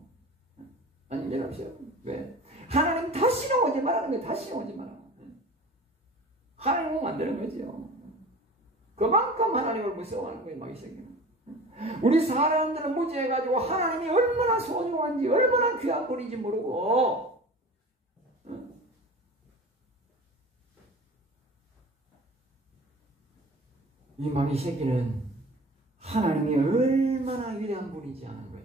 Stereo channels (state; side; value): normal; both; correlation 0.39